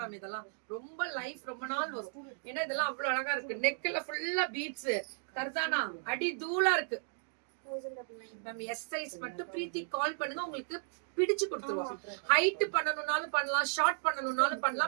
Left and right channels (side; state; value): left; silent; digital silence